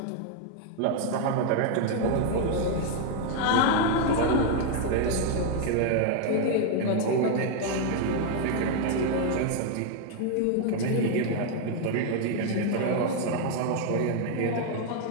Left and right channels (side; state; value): both; different; correlation 0.00